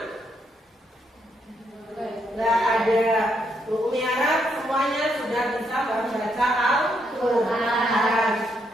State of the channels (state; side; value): normal; both; correlation 0.76